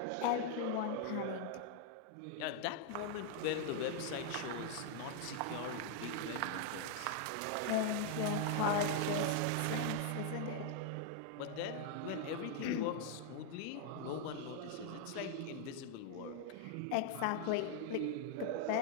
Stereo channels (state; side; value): different; both; correlation 0.00